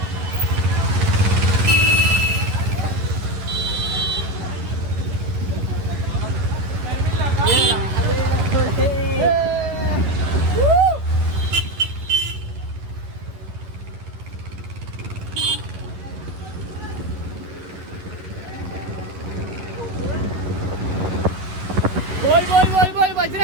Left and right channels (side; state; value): left; late; 11 ms